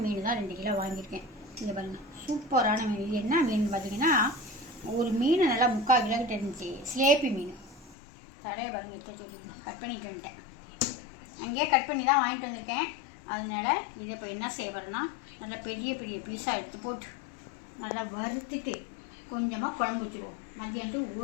மீன் தான் 2 கிலோ வாங்கியிருக்கேன். இதை பாருங்கள், சூப்பரான மீன். இது என்ன மீன் பார்த்தீங்கன்னா, ஒரு மீன் நல்லா 3/4 கிலோக்கிட்ட இருந்துச்சு. சிலேப்பி மீன். தடையை பாருங்கள், எடுத்து சொல்லி கட் பண்ணிட்டு வந்துட்டேன். அங்கேயே கட் பண்ணி தான் வாங்கிட்டு வந்திருக்கேன். அதனால் இதை இப்போ என்ன செய்யப்படுறேன்னா, நல்லா பெரிய பெரிய பீஸாக எடுத்து போட்டு நல்லா வறுத்துட்டு கொஞ்சமாக குழம்பு வச்சுருவோம். மதியானத்துக்கு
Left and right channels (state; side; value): drops out; right; at 8.0 s